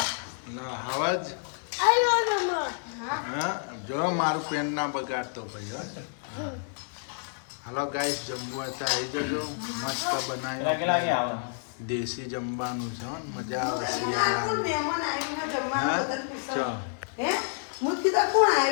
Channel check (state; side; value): silent; right; 59 dB below the other